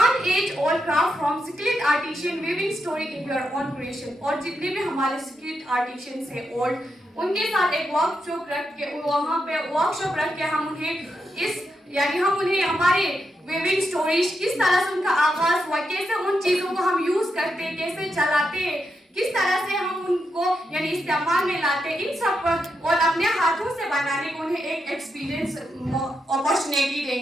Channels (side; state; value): both; normal; correlation 0.84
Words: age-old craft from skilled artisan weaving story in your own creation. और जितने भी हमारे skilled artisans हैं old उनके साथ एक वर्कशॉप रख के वहाँ पे वर्कशॉप रख के हम उन्हें इस यानी हम उन्हें हमारे weaving stories किस तरह से उनका आगाज हुआ, कैसे उन चीजों को हम यूज करते हैं, कैसे चलाते हैं, किस तरह से हम उनको यानी इस्तेमाल में लाते हैं, इन सब पर और अपने हाथों से बनाने को उन्हें एक एक्सपीरियंस अपॉर्चुनिटी